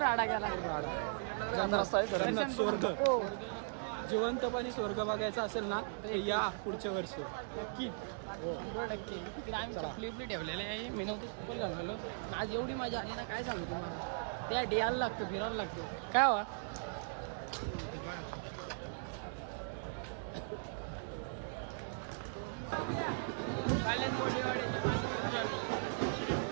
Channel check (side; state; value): left; silent; digital silence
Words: राडा गेला. जन्नत स्वर्ग जिवंतपणे स्वर्ग बघायचा असेल ना तर या पुढच्या वर्षी नक्कीच 100%. तिकडे आम्ही चपली उपली ठेवलेले आहे. मी नव्हतं फुल झालेलो. आज एवढी मजा आली ना काय सांगू तुम्हाला. त्या यायला लागतं, फिरायला लागतं. काय हवा